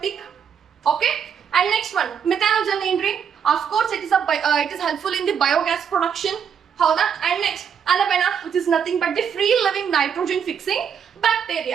Okay, and next one methanogen ಏನ್ರಿ, of course it is helpful in the biogas production, ಹೌದಾ. And next ಅನಬೆನಾ which is nothing but the free living nitrogen fixing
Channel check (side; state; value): left; quieter; 7.6 dB